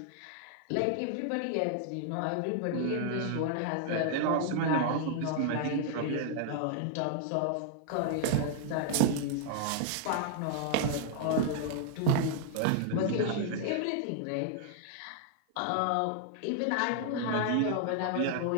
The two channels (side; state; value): both; different; correlation 0.00